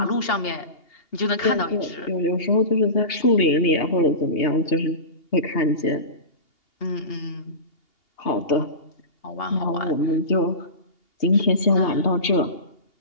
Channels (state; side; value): late; right; 2.8 ms